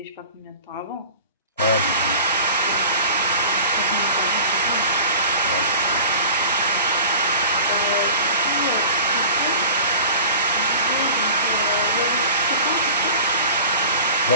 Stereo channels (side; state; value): both; inverted; correlation -0.40